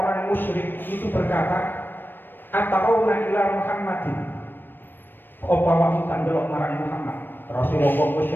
musyrik itu berkata atauna ila Muhammadin, apa awakmu kan delok marang Muhammad, Rasulullah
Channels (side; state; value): right; late; 0.095 ms